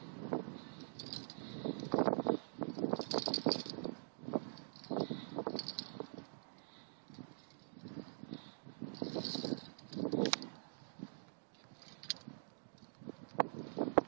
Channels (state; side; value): silent; left; digital silence